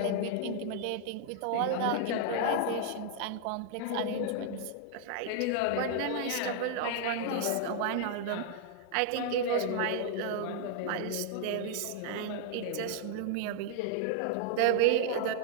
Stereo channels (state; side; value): different; both; correlation 0.00